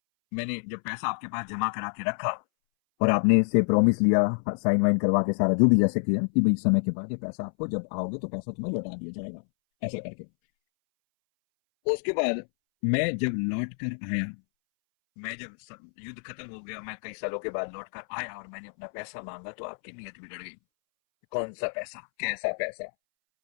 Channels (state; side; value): silent; right; 60 dB below the other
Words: मैंने जब पैसा आपके पास जमा करा के रखा और आपने इससे प्रॉमिस लिया, साइन वाइन करवा के सारा जो भी जैसे किया कि भाई समय के बाद ये पैसा आपको जब आओगे तो पैसा तुम्हें लौटा दिया जाएगा, ऐसा करके। उसके बाद मैं जब लौट कर आया, मैं जब युद्ध खत्म हो गया, मैं कई सालों के बाद लौट कर आया और मैंने अपना पैसा मांगा तो आपकी नीयत बिगड़ गई। कौन सा पैसा, कैसा पैसा,